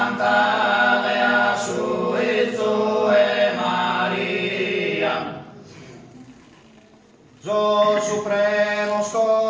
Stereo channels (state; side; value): identical; both; correlation 1.00